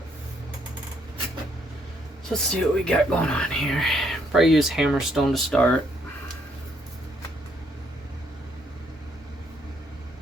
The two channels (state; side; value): normal; both; correlation 0.71